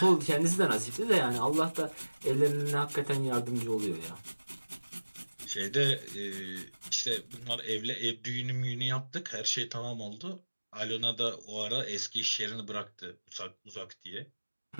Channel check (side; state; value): both; inverted; correlation -1.00